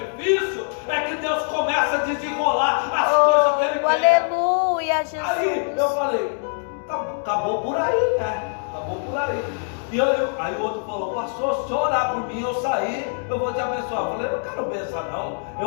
é que Deus começa a desenrolar as coisas que Ele quer. Aleluia, Jesus. Aí eu falei, acabou por aí, né? Acabou por aí. E aí o outro falou, pastor, se o senhor orar por mim, eu sair, eu vou te abençoar. Eu falei, eu não quero benção não,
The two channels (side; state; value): right; silent; digital silence